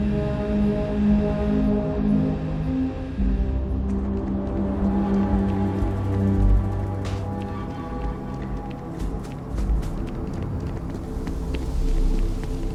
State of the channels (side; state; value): both; identical; correlation 1.00